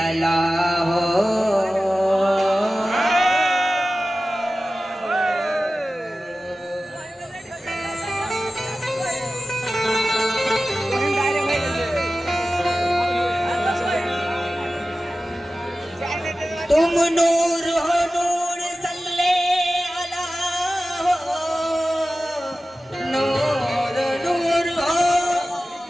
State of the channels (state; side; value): normal; both; correlation 0.95